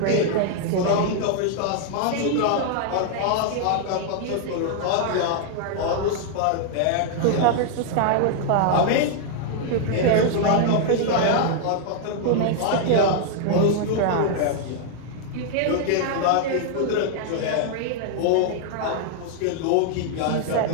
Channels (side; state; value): both; different; correlation 0.00